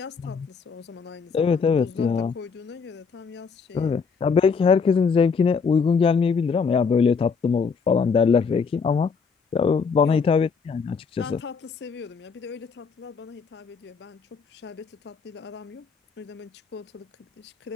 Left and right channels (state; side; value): quieter; right; 5.4 dB